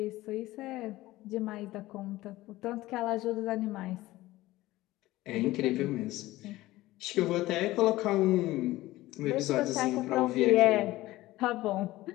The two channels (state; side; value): quieter; right; 17.5 dB